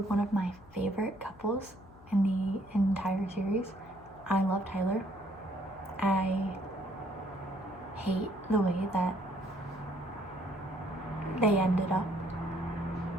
of my favorite couples in the entire series. I love Tyler. I hate the way that they ended up.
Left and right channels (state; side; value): noise; left; hum, 22 dB below the sound